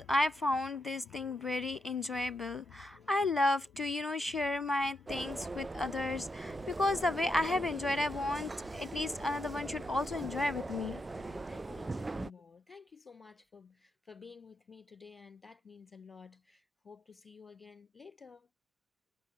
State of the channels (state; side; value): normal; both; correlation 0.83